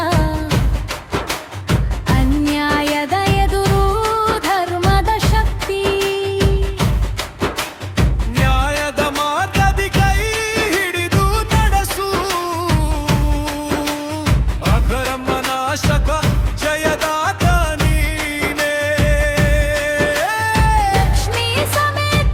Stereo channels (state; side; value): identical; both; correlation 1.00